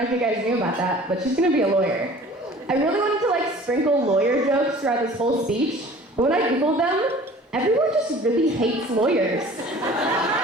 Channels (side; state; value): both; normal; correlation 0.47